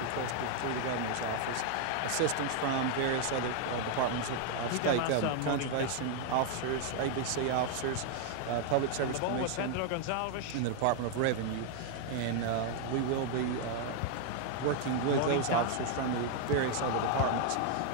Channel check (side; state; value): both; different; correlation 0.00